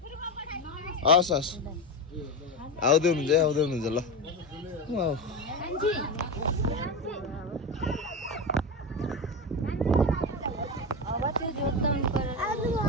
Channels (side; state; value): both; normal; correlation 0.18